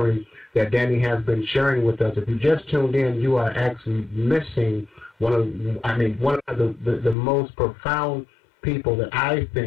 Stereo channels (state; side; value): drops out; right; at 7.2 s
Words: that Danny has been sharing with us. If you just tuned in, you are actually missing one of the most profound people that I